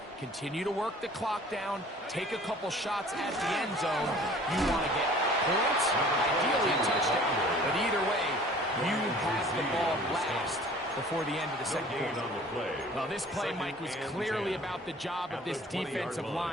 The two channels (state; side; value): normal; both; correlation 0.49